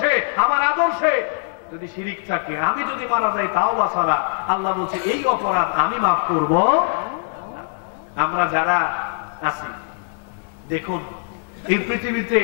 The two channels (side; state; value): right; silent; 63 dB below the other